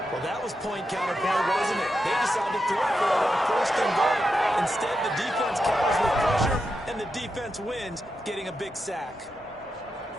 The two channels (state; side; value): normal; both; correlation 0.87